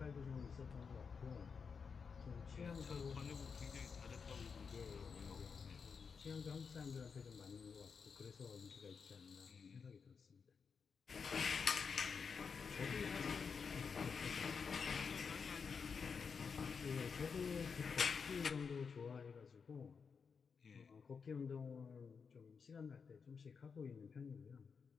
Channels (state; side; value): quieter; right; 5.7 dB